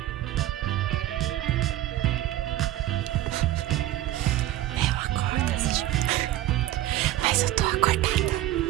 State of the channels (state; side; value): quieter; left; 14.6 dB